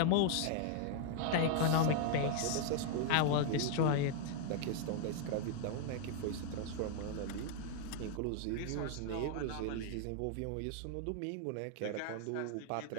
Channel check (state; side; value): different; both; correlation 0.00